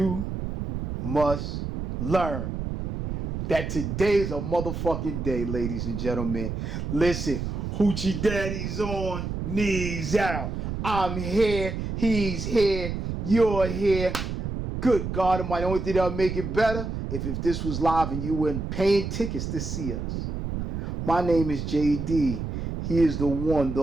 must learn that today's a motherfucking day, ladies and gentlemen. Listen, Hoochie Daddy's on, knees out. I'm here, he's here, you're here. Good God Almighty, the only thing that'll make it better if this was live and you weren't paying tickets to see us. My name is JD. He is the one,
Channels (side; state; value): right; noise; rumble, 4 dB below the sound